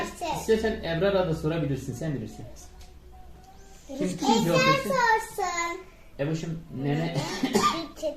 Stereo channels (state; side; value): identical; both; correlation 1.00